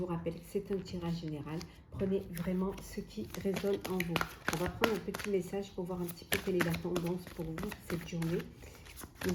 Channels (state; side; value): identical; both; correlation 1.00